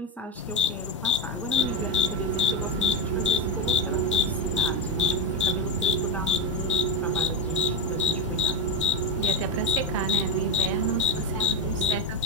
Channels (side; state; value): both; normal; correlation 0.11